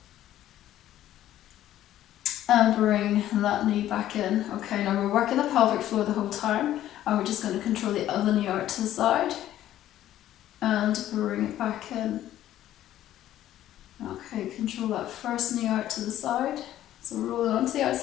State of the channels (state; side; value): quieter; right; 12.8 dB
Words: and bring that knee back in. Okay, now we're working the pelvic floor the whole time, and we're just going to control the other knee out to the side and bring it back in. Okay, control that first knee out to the side. So roll it onto the